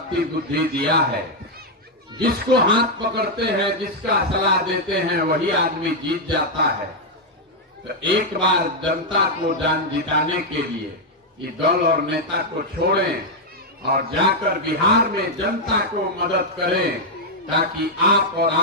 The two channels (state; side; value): normal; both; correlation -0.01